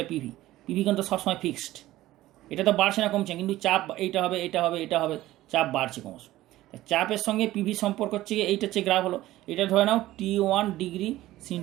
পিভি কিন্তু সবসময় ফিক্সড, এটা তো বাড়ছে না কমছে, কিন্তু চাপ এইটা হবে, চাপ বাড়ছে ক্রমশ। চাপের সঙ্গে পিভি সম্পর্ক হচ্ছে, এইটা হচ্ছে গ্রাফ হলো, এটা ধরে নাও T1 ডিগ্রি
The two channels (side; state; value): left; quieter; 15.9 dB